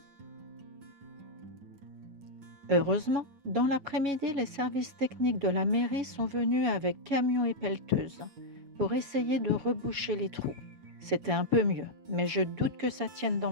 Heureusement, dans l'après-midi, les services techniques de la mairie sont venus avec camions et pelleteuses pour essayer de reboucher les trous. C'était un peu mieux, mais je doute que ça tienne dans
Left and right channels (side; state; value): left; late; 7.1 ms